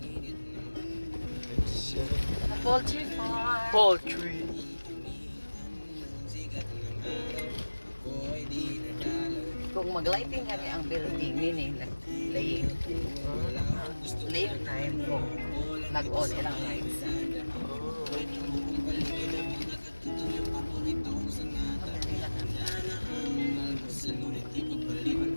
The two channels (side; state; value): both; inverted; correlation -1.00